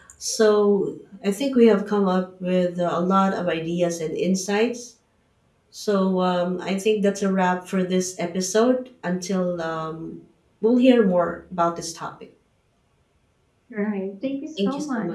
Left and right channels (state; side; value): identical; both; correlation 1.00